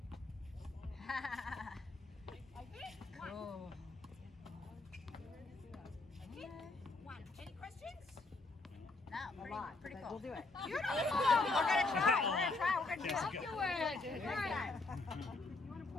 I hit, one. Oh. I hit, one. Any questions? No, pretty cool. We'll do it. Beautiful. We're gonna try. We're gonna do it. Afterwards. All right.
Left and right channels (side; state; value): right; quieter; 3.4 dB